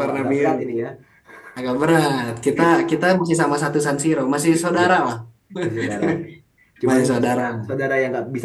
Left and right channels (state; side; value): identical; both; correlation 1.00